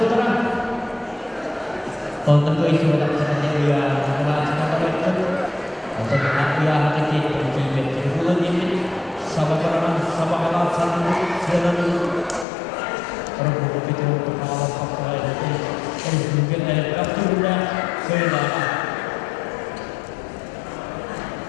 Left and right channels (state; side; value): drops out; right; at 12.5 s